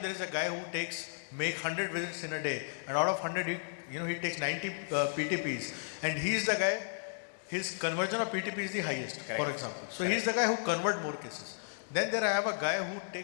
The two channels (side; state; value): right; silent; digital silence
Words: is a guy who make 100 visits in a day, and out of 100, he takes 90 PTPs, and he's the guy. His conversion of PTP is the highest, for example. So he's the guy who convert more cases. Then there I have a guy